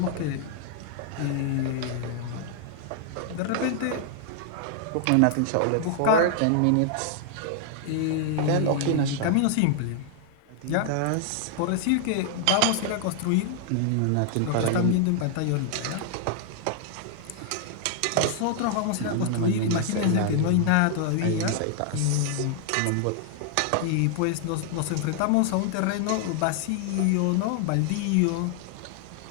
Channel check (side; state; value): both; different; correlation 0.00